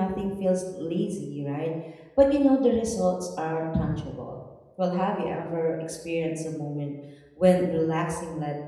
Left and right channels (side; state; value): both; identical; correlation 1.00